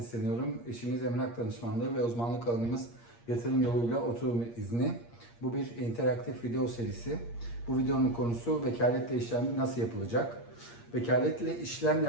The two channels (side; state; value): right; late; 8.6 ms